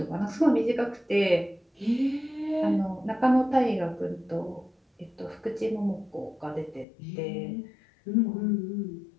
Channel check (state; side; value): drops out; right; at 6.9 s